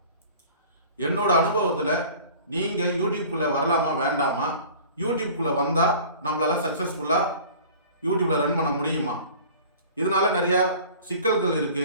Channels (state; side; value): inverted; both; correlation -0.44